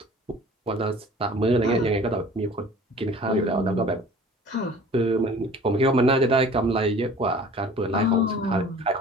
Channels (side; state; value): both; normal; correlation 0.47